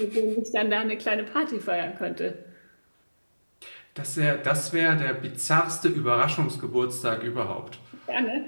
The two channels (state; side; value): inverted; both; correlation -1.00